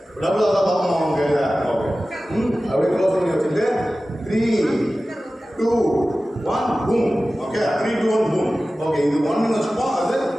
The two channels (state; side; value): normal; both; correlation 0.96